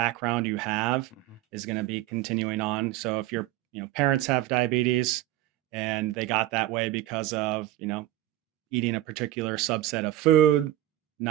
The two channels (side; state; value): left; quieter; 14.4 dB